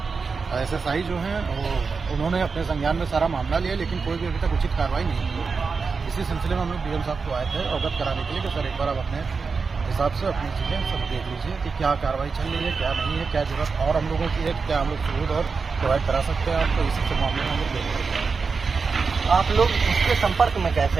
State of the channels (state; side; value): quieter; left; 4.9 dB